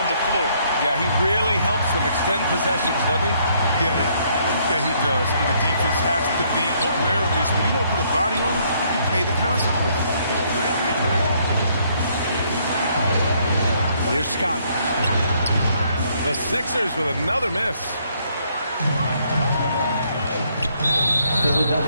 the floor. Yeah, he really helps them extend possessions, doesn't he? Yeah, he does. And the defense has to be aware of this. When you don't put a body on it, you pay the consequences. Here's Scott. The Sixers with another miss.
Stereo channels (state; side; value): inverted; both; correlation -0.68